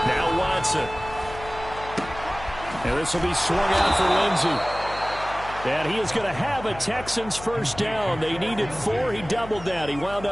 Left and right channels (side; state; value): left; noise; hum, 14 dB below the sound